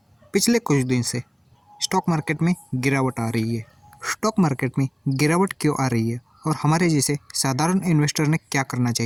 पिछले कुछ दिन से स्टॉक मार्केट में गिरावट आ रही है। स्टॉक मार्केट में गिरावट क्यों आ रही है और हमारे जैसे साधारण इन्वेस्टर ने क्या करना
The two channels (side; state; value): both; identical; correlation 1.00